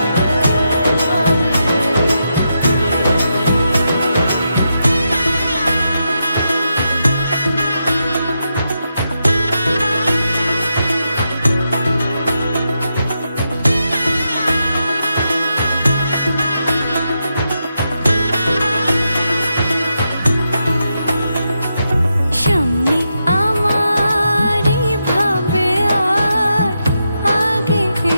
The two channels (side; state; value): both; inverted; correlation -0.85